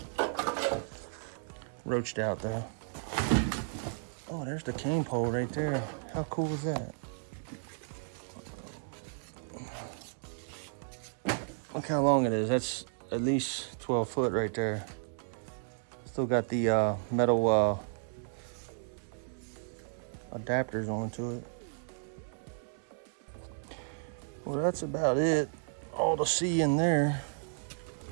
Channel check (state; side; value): silent; left; digital silence